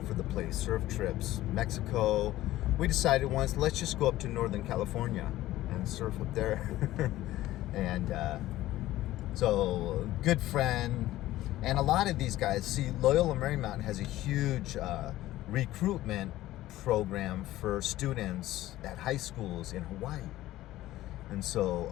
the place, surf trips, Mexico. We decided once, let's just go up to Northern California and surf up there. And so, good friend. And a lot of these guys, see, Loyola Marymount has a huge recruitment program for students at high schools in Hawaii. And so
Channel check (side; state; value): right; quieter; 15.5 dB